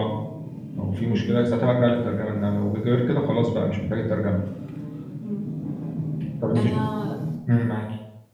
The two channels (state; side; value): identical; both; correlation 1.00